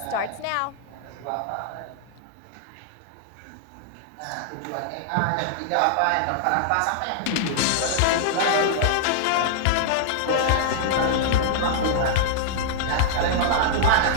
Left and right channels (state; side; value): different; both; correlation -0.01